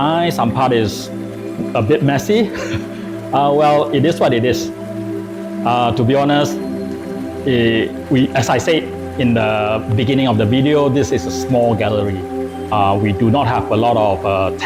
some part is a bit messy. Well, it is what it is. To be honest, as I said in the beginning of the video, this is a small gallery. We do not have a lot of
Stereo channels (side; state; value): both; identical; correlation 1.00